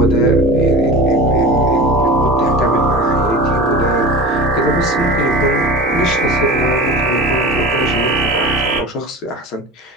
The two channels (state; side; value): normal; both; correlation 0.34